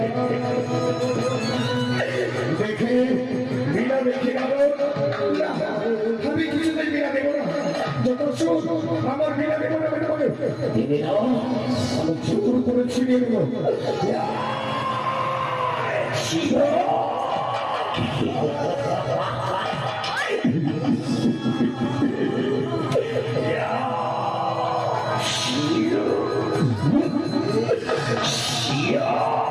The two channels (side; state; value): both; identical; correlation 1.00